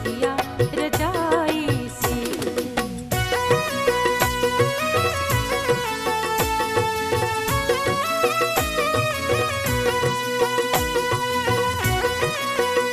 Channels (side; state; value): both; identical; correlation 1.00